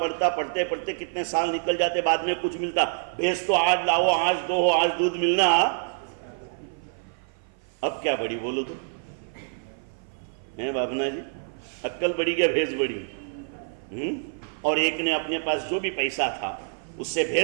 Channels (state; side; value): silent; left; 55 dB below the other